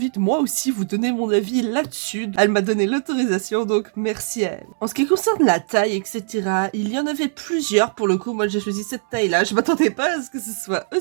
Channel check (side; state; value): left; silent; 65 dB below the other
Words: de moi aussi vous donner mon avis là-dessus. Elle m'a donné l'autorisation, donc merci à elle. En ce qui concerne la taille, etc., il y en avait plusieurs pour le coup. Moi j'ai choisi cette taille-là. Je m'attendais pas à ce que ce soit